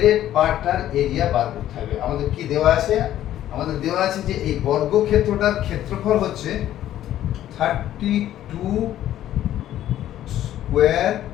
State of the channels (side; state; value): right; quieter; 12.4 dB